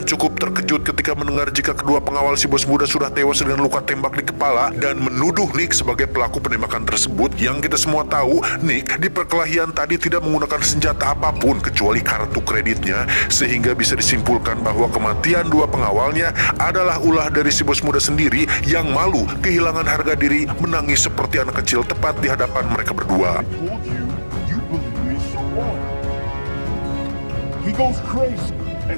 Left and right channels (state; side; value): inverted; both; correlation -1.00